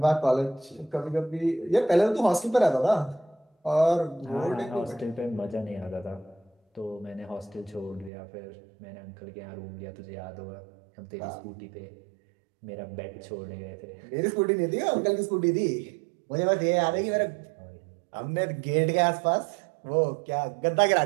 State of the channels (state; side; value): drops out; left; at 8.1 s